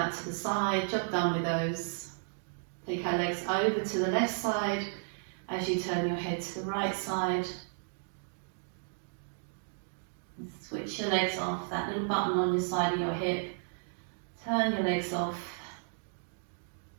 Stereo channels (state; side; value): silent; left; digital silence